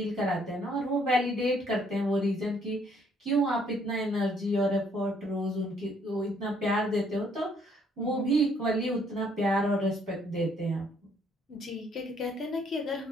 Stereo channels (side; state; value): both; normal; correlation 0.66